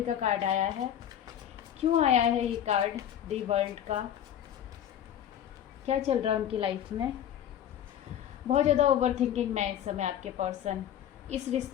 का कार्ड आया है। क्यों आया है ये कार्ड दी वर्ल्ड का? क्या चल रहा है उनकी लाइफ में? बहुत ज़्यादा ओवर थिंकिंग में है इस समय आपके पर्सन। इस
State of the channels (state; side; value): quieter; right; 10.3 dB